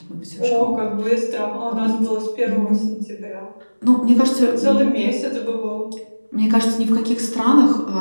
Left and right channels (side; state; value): both; inverted; correlation -1.00